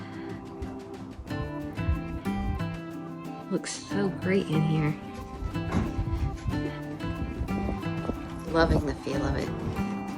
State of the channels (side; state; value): both; identical; correlation 1.00